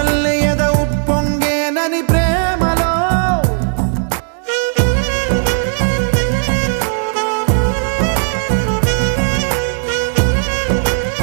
ఎద ఉప్పొంగేనని ప్రేమలో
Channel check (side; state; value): left; silent; 69 dB below the other